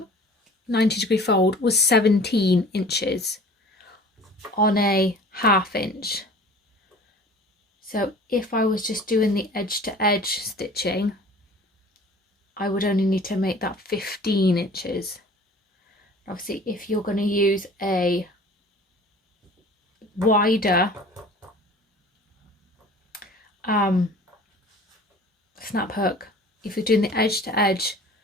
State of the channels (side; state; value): both; normal; correlation 0.45